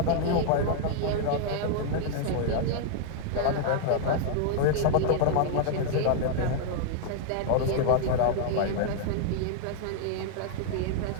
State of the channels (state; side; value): different; both; correlation -0.01